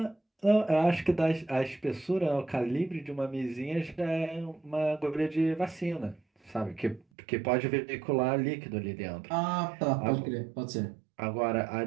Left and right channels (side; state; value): left; drops out; at 7.1 s